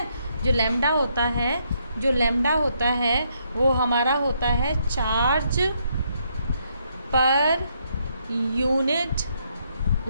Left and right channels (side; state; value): both; inverted; correlation -0.75